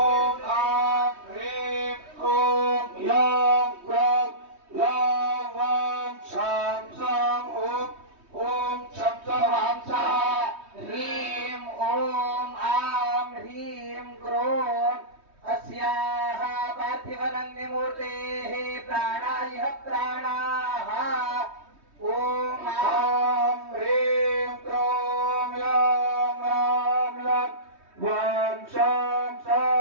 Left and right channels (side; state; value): left; late; 3.2 ms